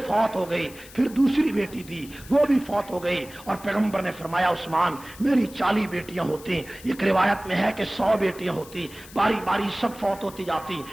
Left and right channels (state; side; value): noise; left; hiss, 19 dB below the sound